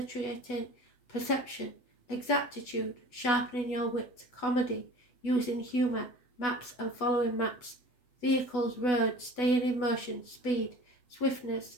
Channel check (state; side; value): late; right; 8.1 ms